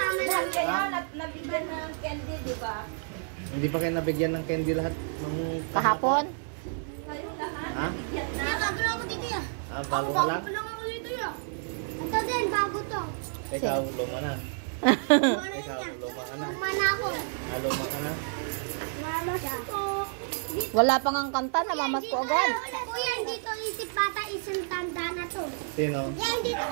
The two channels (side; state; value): left; silent; 58 dB below the other